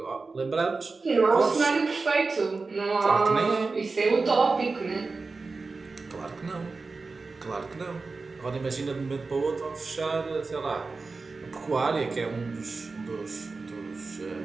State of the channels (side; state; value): left; quieter; 4.0 dB